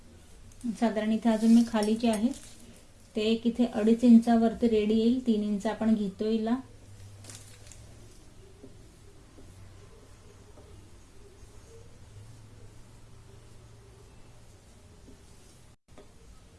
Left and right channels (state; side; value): identical; both; correlation 1.00